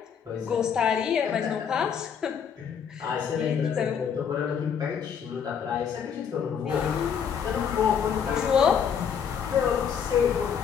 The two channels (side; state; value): right; quieter; 7.4 dB